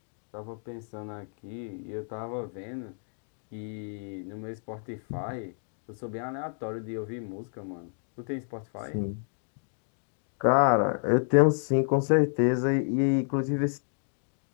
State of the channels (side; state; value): right; silent; 58 dB below the other